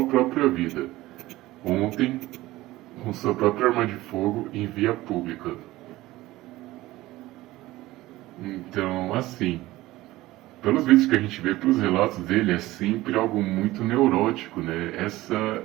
própria vida. Ontem, com sua própria arma de fogo em via pública. Então, assim, pelos vídeos que a gente vê, pelos relatos dele, é sempre algo muito neurótico, né? Essa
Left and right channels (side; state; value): left; quieter; 17.6 dB